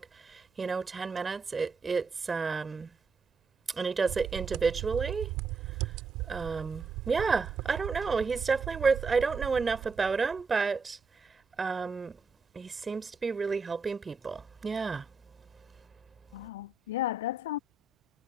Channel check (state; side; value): quieter; left; 4.2 dB